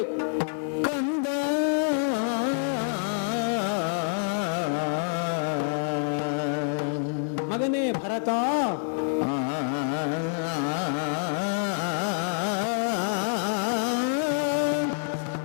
ಕಂದ. ಮಗನೇ ಭರತ,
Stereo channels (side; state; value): right; silent; digital silence